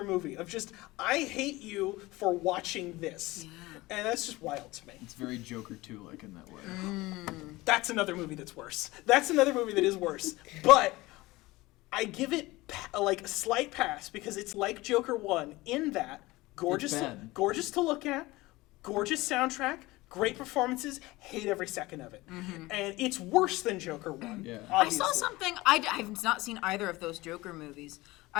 movie of just, I hate you for watching this. Yeah. And that's just wild to me. It's very Joker 2 like in that way. That's another movie that's worse. That's another movie that is worse. But I give it like a slight pass because it's like Joker 1 in that gorgeous bad. to look at, gorgeous soundtrack, great performances, hate every second of it. And it's worse than Joker 1. Yeah. I Obviously. saw something. I've not seen either of those Joker movies.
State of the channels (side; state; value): right; quieter; 20.3 dB